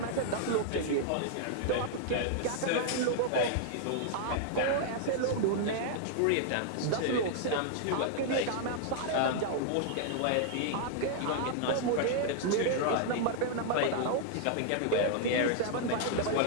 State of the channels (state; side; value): different; both; correlation -0.01